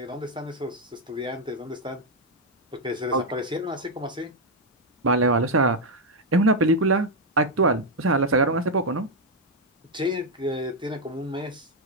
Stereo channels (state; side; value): normal; both; correlation 0.01